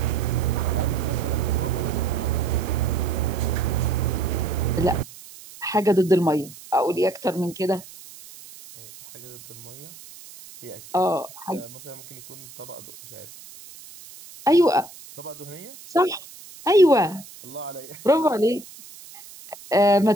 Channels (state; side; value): noise; right; hiss, 18 dB below the sound